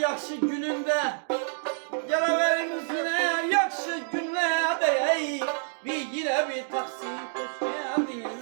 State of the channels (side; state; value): left; silent; digital silence